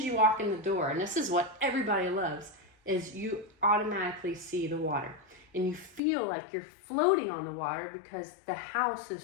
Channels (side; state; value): right; drops out; at 6.0 s